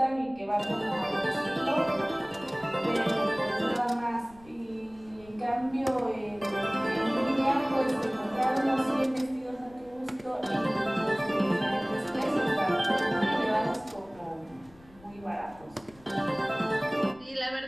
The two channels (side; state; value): left; noise; rumble, 25 dB below the sound